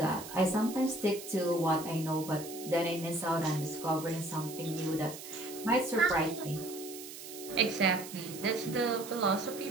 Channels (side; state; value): right; noise; hiss, 12 dB below the sound